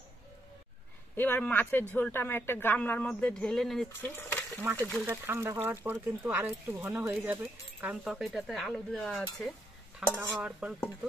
এবার মাছের ঝোলটা আমি একটা গামলার মধ্যে ঢেলে নিচ্ছি। মাছের ঝোলটা ঠান্ডা হওয়ার পর কিন্তু আরো একটু ঘন হয়ে যাবে, কারণ তরকারিটাতে আলু দেওয়া আছে। ঠান্ডা হওয়ার পর কিন্তু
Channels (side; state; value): both; normal; correlation 0.77